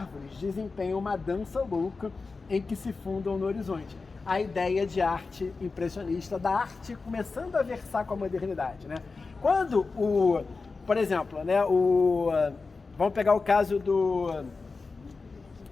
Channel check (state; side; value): quieter; right; 4.2 dB